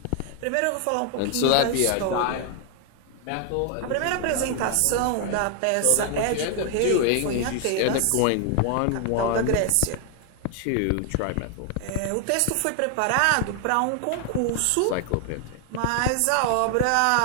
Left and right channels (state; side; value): different; both; correlation 0.00